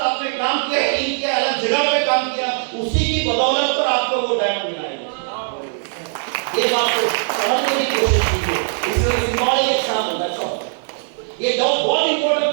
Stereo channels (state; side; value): silent; left; digital silence